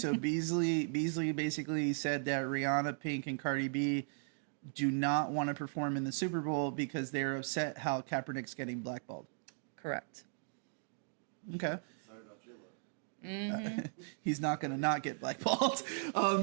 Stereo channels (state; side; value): silent; left; digital silence